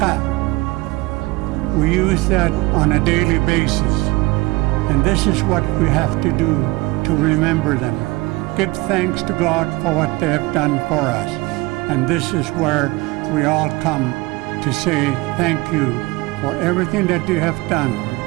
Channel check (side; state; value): left; quieter; 22.5 dB